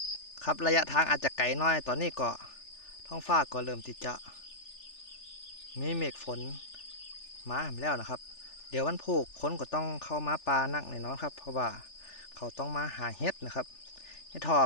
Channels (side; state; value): right; late; 3.4 ms